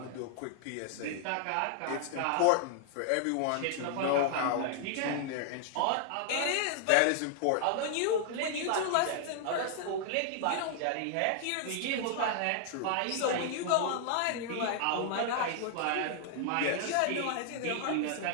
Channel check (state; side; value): different; both; correlation 0.00